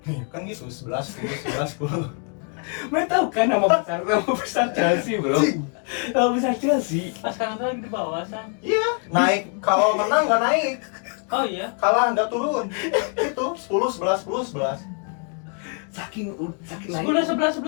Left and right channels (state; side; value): quieter; right; 39.5 dB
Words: Nih, kan gitu, 11, 10. Mereka tahu kan nama besar Chelsea bro. Nama besar Chelsea. Pas sekarang tuh lagi di bawah, San. Iya, naik. Kalau menang nggak naik. Oh iya. Kalah nggak turun. Itu 10, 11. Saking 10,